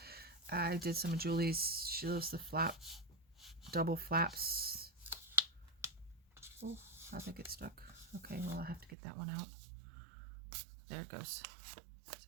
I did some of Julie's, she loves the double flaps. Oh, I think it's stuck. Okay, well, I have to get that one out. There it goes. So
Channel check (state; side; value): drops out; left; at 9.0 s